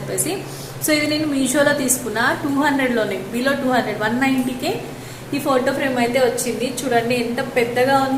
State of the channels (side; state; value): both; identical; correlation 1.00